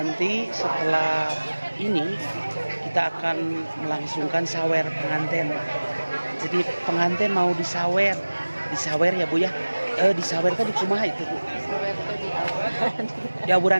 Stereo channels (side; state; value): both; inverted; correlation -1.00